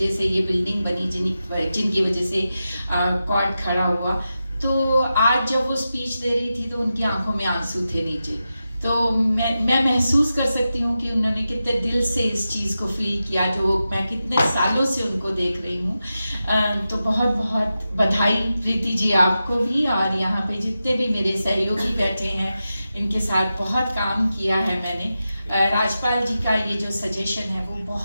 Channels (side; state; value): both; inverted; correlation -0.91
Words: से ये बिल्डिंग बनी, जिनकी वजह से कॉट खड़ा हुआ। तो आज जब वो स्पीच दे रही थी तो उनकी आंखों में आंसू थे नीचे। तो मैं महसूस कर सकती हूँ कि उन्होंने कितने दिल से इस चीज़ को फील किया जो मैं कितने सालों से उनको देख रही हूँ। तो बहुत बहुत बधाई प्रीति जी आपको भी, और यहाँ पे जितने भी मेरे सहयोगी बैठे हैं इनके साथ बहुत काम किया है मैंने। राजपाल जी का ये जो सजेशन है वो